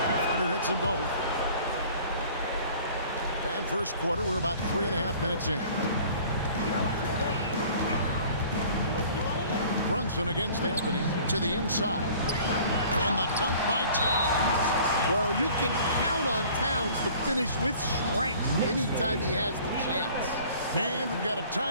Carter hits them both. And first quarter, we're about 3.5 minutes in. Brunson against Anthony to the inside. And the dunk by Towns. Well, you can count on Towns to finish with strength anytime he has the chance. And we've got a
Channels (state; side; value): inverted; both; correlation -0.50